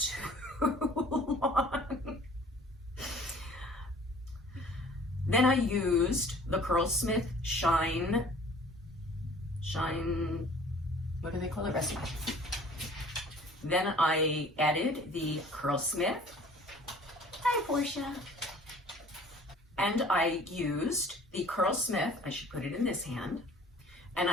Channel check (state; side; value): normal; both; correlation 0.50